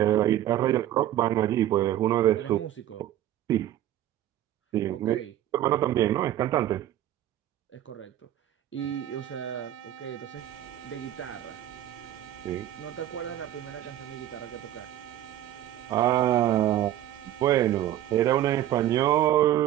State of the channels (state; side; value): quieter; left; 12.6 dB